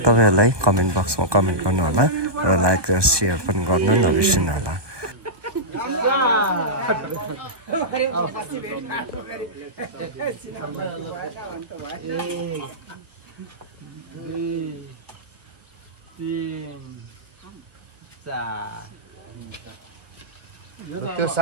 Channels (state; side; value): late; left; 1.2 ms